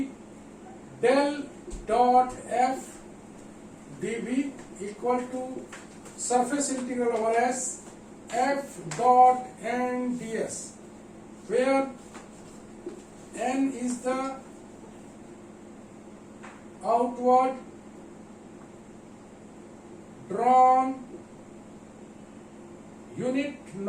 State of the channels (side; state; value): both; identical; correlation 1.00